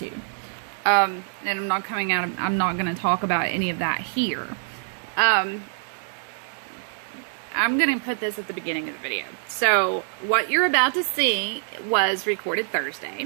And I'm not going to talk about any of that here. I'm going to put this at the beginning of the video. So, what you're about to see was recorded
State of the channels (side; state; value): left; silent; digital silence